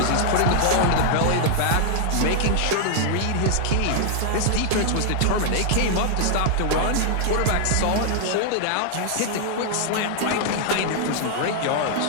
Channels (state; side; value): different; both; correlation 0.00